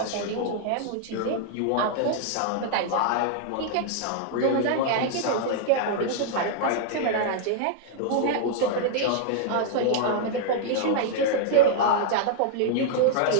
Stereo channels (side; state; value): both; different; correlation -0.01